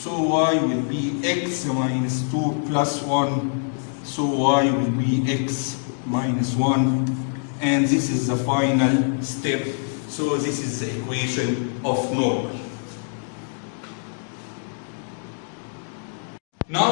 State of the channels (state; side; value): silent; right; 63 dB below the other